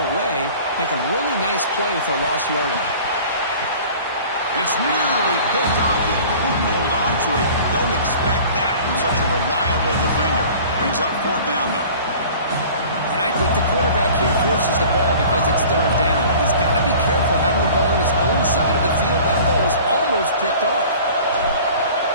away, make a really nice play for a lost yardage. It's nearly picked off. He couldn't hold on to it. Don't expect that from such a reliable defender. Brings up 4th down, though. And I think the quarterback here forces the ball because it's 3rd down. He's got to be careful having the ball on his own side of the field. That ball was almost picked off.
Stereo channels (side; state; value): both; inverted; correlation -0.45